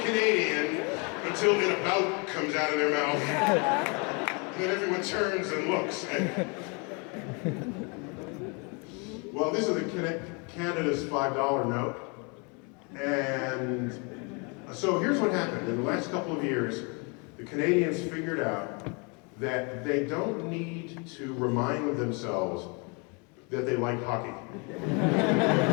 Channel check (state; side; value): quieter; right; 32.8 dB